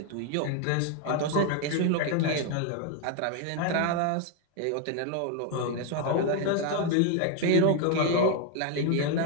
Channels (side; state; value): both; different; correlation 0.01